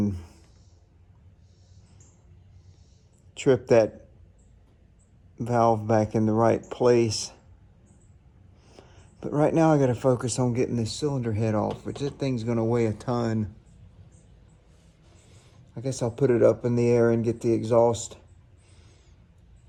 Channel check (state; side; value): identical; both; correlation 1.00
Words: trip that valve back in the right place. But right now I gotta focus on getting this cylinder head off, which that thing's gonna weigh a ton. I guess I'll put it up in the air and get the exhaust